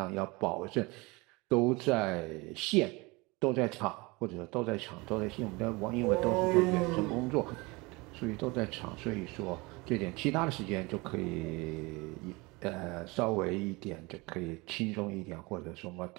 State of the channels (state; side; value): quieter; left; 25.0 dB